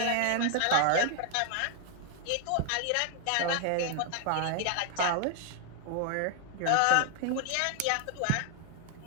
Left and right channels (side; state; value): both; different; correlation 0.00